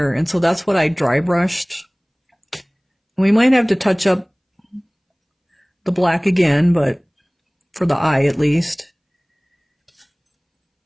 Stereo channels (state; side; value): identical; both; correlation 1.00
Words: And so that's what I dry brushed. We might have to touch up the black again, but for the eye at least.